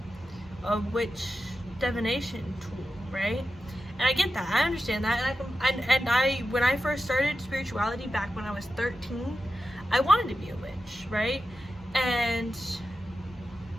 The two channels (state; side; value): normal; both; correlation 0.91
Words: witch divination tool, right? And I get that, I understand that, and I when I first started spirituality back when I was 13, I wanted to be a witch, right? And,